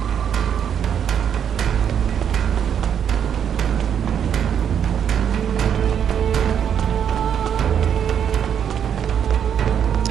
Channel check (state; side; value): quieter; left; 8.5 dB